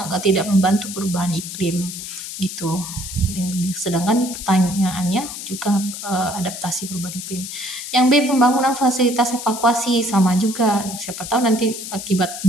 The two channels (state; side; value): noise; left; hiss, 9 dB below the sound